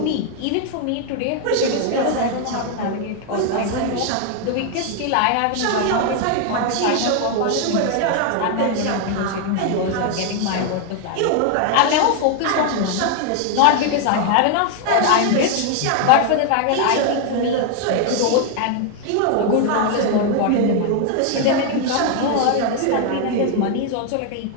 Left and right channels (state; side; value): different; both; correlation 0.00